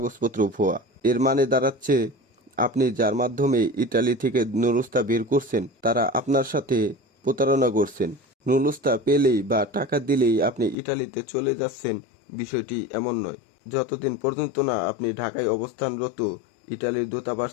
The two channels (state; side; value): drops out; right; at 10.8 s